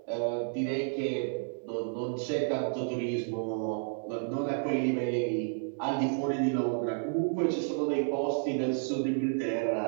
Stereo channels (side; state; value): left; silent; digital silence